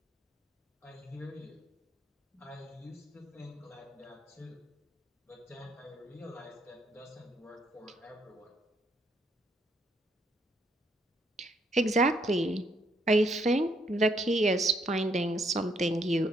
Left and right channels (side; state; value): both; normal; correlation 0.71